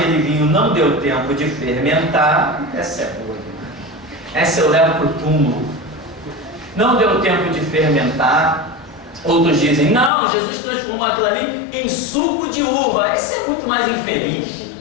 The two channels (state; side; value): drops out; right; at 10.1 s